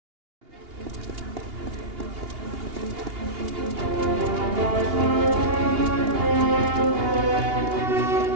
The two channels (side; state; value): left; late; 2.8 ms